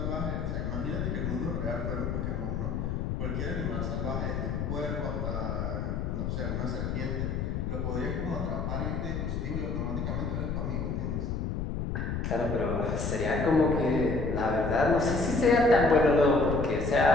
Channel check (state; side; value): noise; left; rumble, 2 dB below the sound